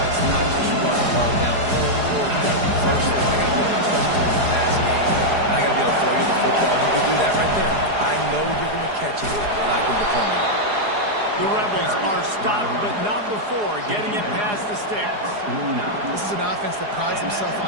it's not just run love down anymore. You got to be versatile. I got to be able to trust you in the pass game. And I got to be able to throw you the football. You can do that right there. I know you're going to catch it, and I can depend on it. The Rebels are stopped, but not before getting it past the sticks. This is an offense that prides himself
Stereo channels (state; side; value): late; left; 4.8 ms